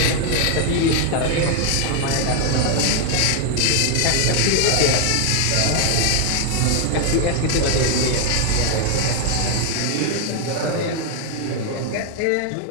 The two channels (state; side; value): different; both; correlation 0.00